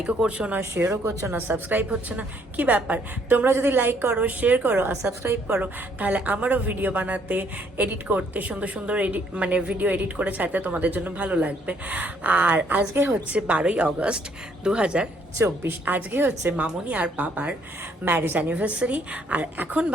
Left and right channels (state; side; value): normal; both; correlation 0.67